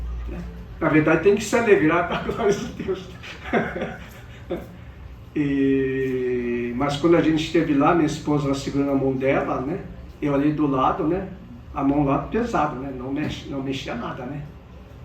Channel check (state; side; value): identical; both; correlation 1.00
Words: Na verdade, tem que se alegrar para a glória de Deus. Mas quando a gente esteve lá, minha esposa segurando a mão dela, né? Eu ali do lado, né? A mão lá pesada, né? Não mexia nada, né?